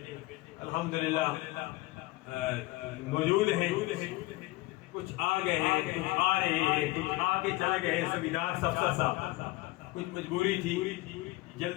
الحمدللہ موجود ہیں، کچھ آ گئے ہیں، کچھ آ رہے ہیں، کچھ آ کے چلے گئے، سبیدار سفسر صاحب کچھ مجبوری تھی،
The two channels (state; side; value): quieter; right; 20.0 dB